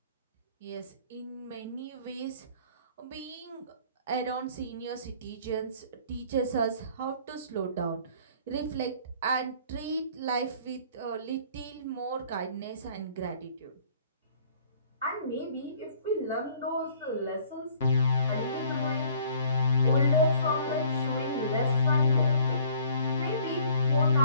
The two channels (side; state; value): both; inverted; correlation -0.55